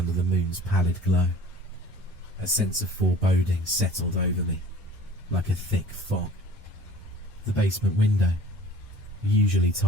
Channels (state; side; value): normal; both; correlation 0.45